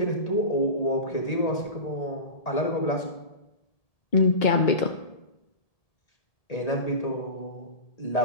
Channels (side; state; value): right; late; 1.7 ms